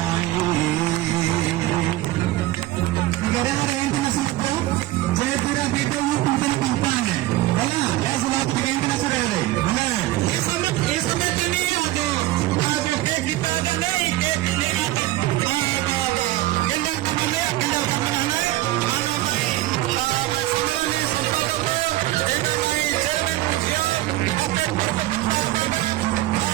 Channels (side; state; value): left; quieter; 16.5 dB